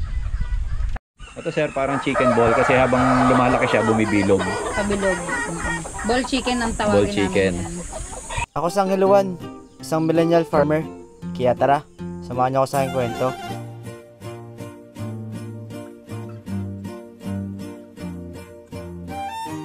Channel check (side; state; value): both; identical; correlation 1.00